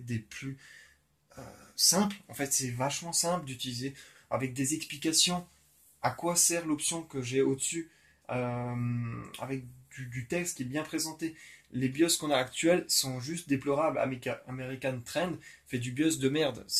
plus euh, simples. En fait, c'est vachement simple d'utiliser avec des explications à quoi sert l'option que j'ai au-dessus avec du texte qui est bien présenté. Les BIOS qu'on a actuels sont juste déplorables. American Trend fait du BIOS de merde,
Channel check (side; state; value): both; identical; correlation 1.00